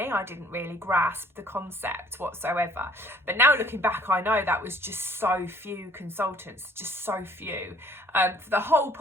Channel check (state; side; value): normal; both; correlation 0.57